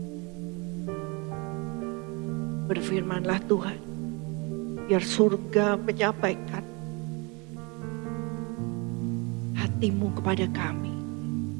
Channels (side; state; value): left; quieter; 29.5 dB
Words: Berfirmanlah Tuhan, biar surga menyampaikan hati-Mu kepada kami.